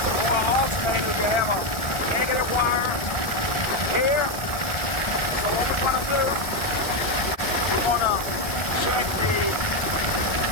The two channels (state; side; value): late; right; 1.4 ms